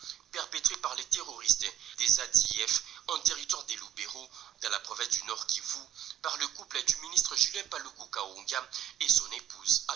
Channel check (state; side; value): quieter; left; 10.4 dB